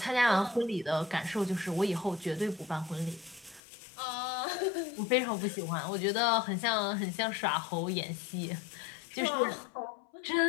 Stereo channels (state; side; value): drops out; right; at 3.6 s